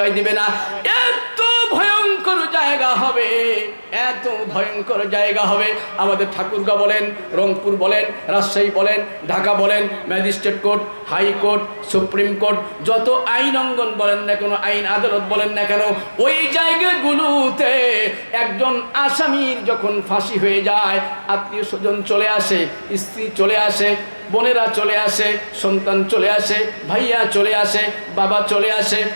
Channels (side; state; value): both; inverted; correlation -1.00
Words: দিবে না। এত ভয়ঙ্কর জায়গা হবে, এত ভয়ঙ্কর জায়গা হবে। আমাদের ঠাকুরগাঁও বলেন, রংপুর বলেন, রাজশাহী বলেন, ঢাকা বলেন, magistrate court, high court, supreme court, যত আইন অঙ্গন বলেন না কেন, আইন আদালত বলেন না কেন, ওই জায়গাগুলোতে একজন আসামির যখন ফাঁসি হয়ে যায়, আত্মীয় স্বজন চলে আসে, স্ত্রী চলে আসে, বোনেরা চলে আসে, সন্তান চলে আসে, ভাইয়া চলে আসে, বাবা চলে আসে,